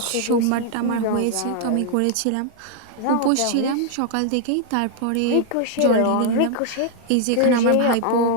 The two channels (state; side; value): different; both; correlation 0.00